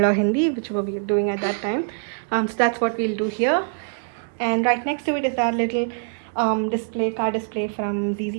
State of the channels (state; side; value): silent; left; 63 dB below the other